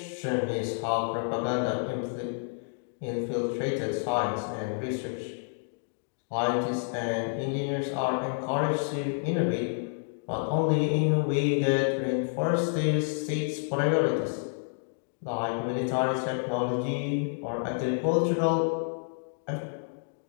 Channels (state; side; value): silent; right; digital silence